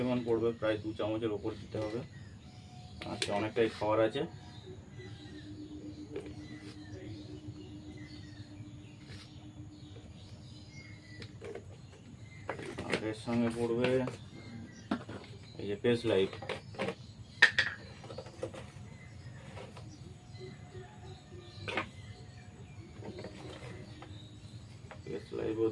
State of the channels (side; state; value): both; identical; correlation 1.00